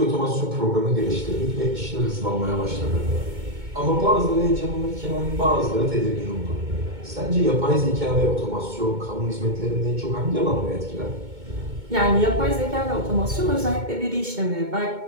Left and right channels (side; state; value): left; late; 2.2 ms